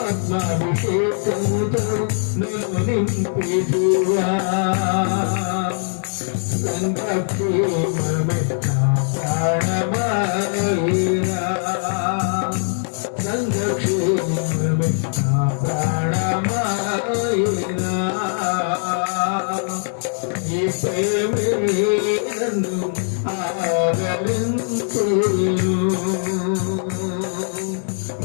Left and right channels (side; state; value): right; silent; digital silence